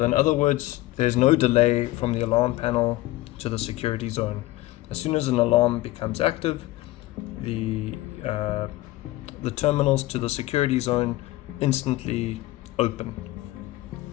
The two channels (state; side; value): quieter; right; 18.1 dB